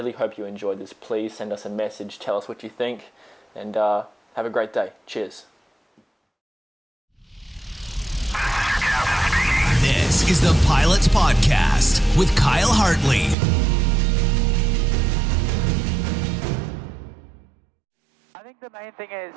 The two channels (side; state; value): left; drops out; at 13.4 s